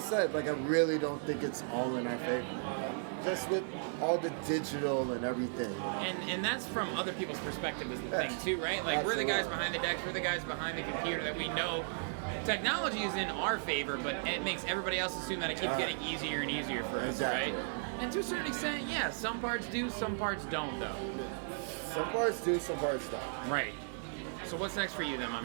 like I really don't think it's all in our favor. Just with all the digital and everything. You know? And that's from other people's perspective is the thing too, right? Like we're the guys behind the decks, we're the guys behind the computer that we know technology is in our favor, but it makes everybody else assume that it keeps getting easier and easier for us, exactly. right? And to a certain extent, yeah, some parts do, some parts don't though. Some parts do, some parts don't. Right. So what's next for you then, my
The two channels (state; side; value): silent; left; digital silence